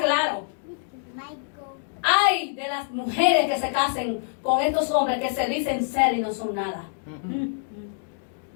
Ay de las mujeres que se casen con estos hombres que se dicen ser y no son nada.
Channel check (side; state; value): right; silent; digital silence